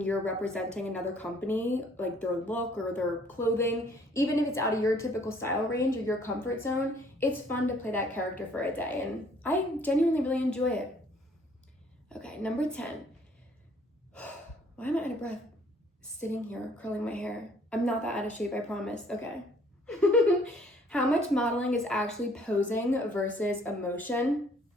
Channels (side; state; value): both; normal; correlation 0.60